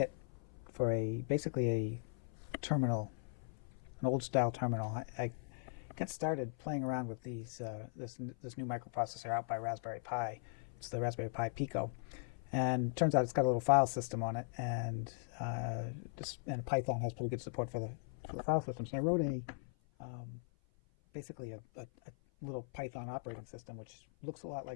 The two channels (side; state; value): right; silent; 52 dB below the other